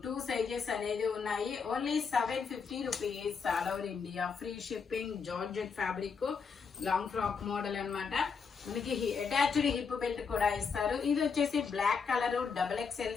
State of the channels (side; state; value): right; quieter; 5.6 dB